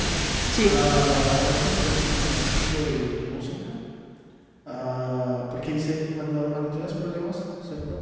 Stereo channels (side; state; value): both; identical; correlation 1.00